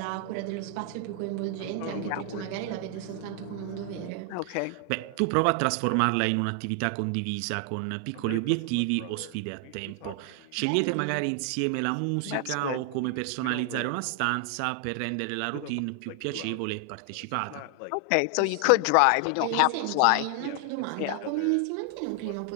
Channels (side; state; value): both; different; correlation 0.00